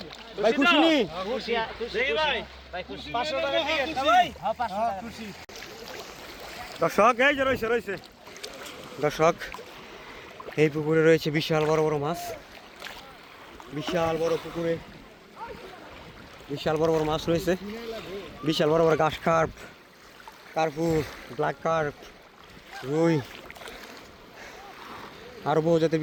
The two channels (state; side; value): identical; both; correlation 1.00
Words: ভাই খুশি নি? দেখি ভাই 500 টাকা টিকিট না ভাই? হ্যাঁ 500 টাকা খুশি। দর্শক এই যে রয়েছে দর্শক, এই পুকুরে রয়েছে বিশাল বড় বড় মাছ, বিশাল বড় পুকুরে বিশাল বড় বড় মাছ রয়েছে, বিশাল বড় বড় ঘাস কার্প, কার্পু, ব্ল্যাক কার্প, রুই, আরও বহু জাতের